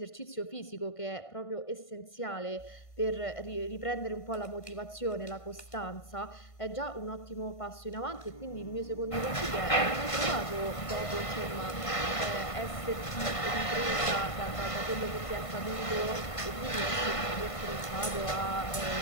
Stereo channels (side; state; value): right; late; 1.5 ms